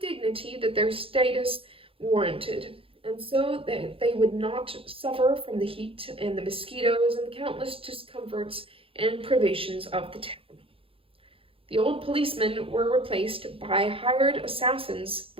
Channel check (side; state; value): left; late; 0.27 ms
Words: dignity that their status warranted, and so that they would not suffer from the heat and the mosquitoes and the countless discomforts and privations of the town. The old policemen were replaced by hired assassins